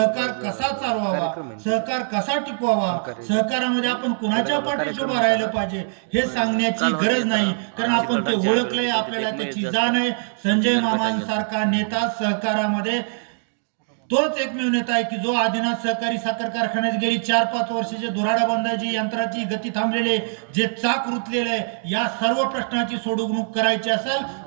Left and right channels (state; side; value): silent; left; digital silence